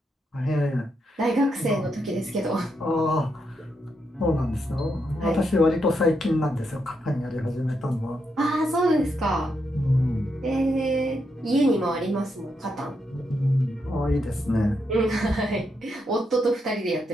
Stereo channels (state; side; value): normal; both; correlation 0.81